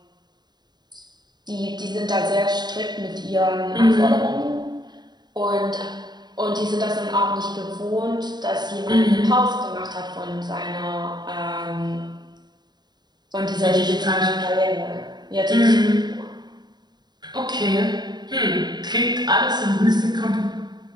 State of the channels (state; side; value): late; left; 0.20 ms